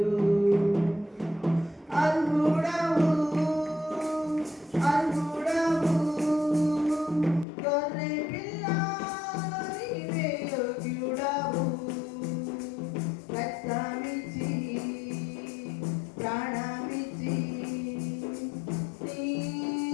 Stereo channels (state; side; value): drops out; right; at 7.5 s